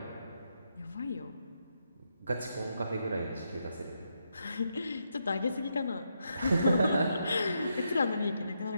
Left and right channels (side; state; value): both; inverted; correlation -0.81